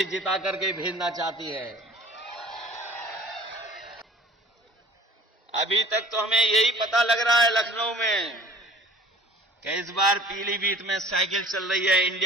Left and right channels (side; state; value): both; normal; correlation 0.48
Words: जिता करके भेजना चाहती है। अभी तक तो हमें यही पता लग रहा है लखनऊ में कि इस बार पीलीभीत में साइकिल चल रही है,